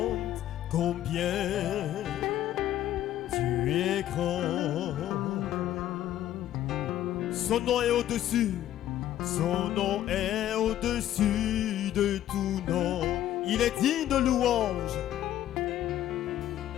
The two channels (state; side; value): quieter; right; 12.5 dB